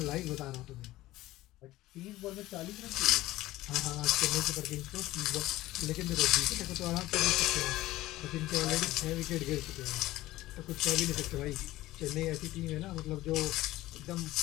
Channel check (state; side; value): quieter; right; 16.8 dB